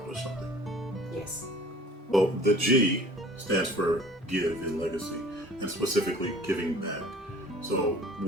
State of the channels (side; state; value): both; normal; correlation 0.48